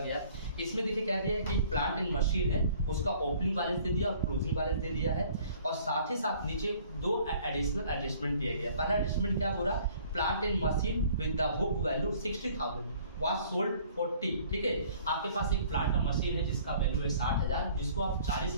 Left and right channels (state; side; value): inverted; both; correlation -0.55